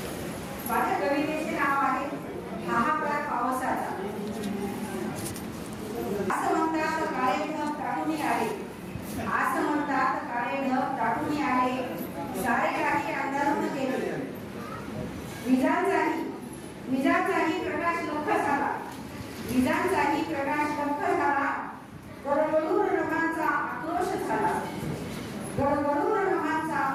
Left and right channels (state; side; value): identical; both; correlation 1.00